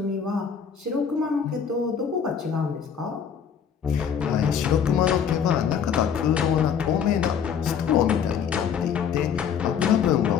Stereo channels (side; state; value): right; quieter; 7.5 dB